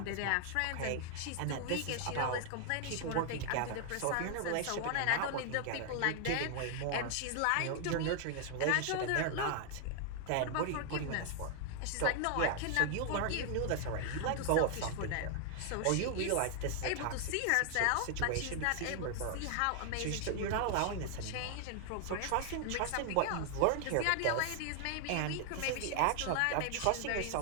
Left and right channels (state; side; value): different; both; correlation 0.00